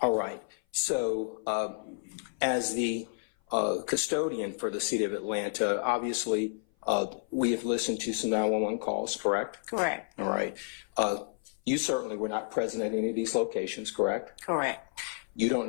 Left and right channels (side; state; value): right; silent; 55 dB below the other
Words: right. So as the custodian for the City of Atlanta, obviously we have listened to some 911 calls, correct? Correct. All right. You certainly were not present at any of these locations, correct? Correct. You don't